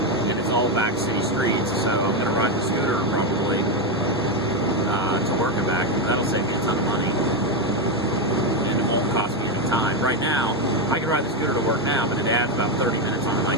And it's all back city streets, so I'm gonna ride the scooter probably to work and back. That'll save me a ton of money, and it won't cost me any time. Right now, I can ride the scooter to work now, but it adds about 30 minutes on my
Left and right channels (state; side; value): normal; both; correlation 0.08